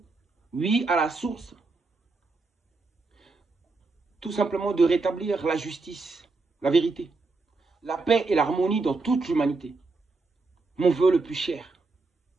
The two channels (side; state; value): left; quieter; 3.7 dB